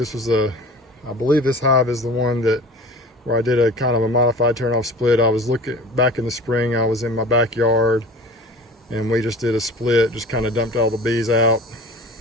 hive is the one where I did a kind of a modified turn-off split. I was looking back in the spring. I was in my backyard, and we just did a split. Just kind of dumped all the bees out.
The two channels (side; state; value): both; normal; correlation 0.40